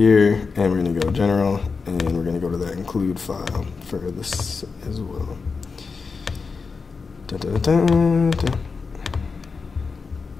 and we're going to go general, and we're going to go to that include file for this as well.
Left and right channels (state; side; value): quieter; right; 4.8 dB